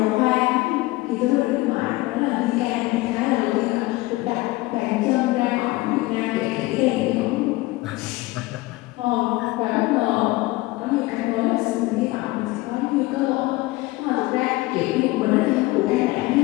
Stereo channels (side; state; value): right; quieter; 20.1 dB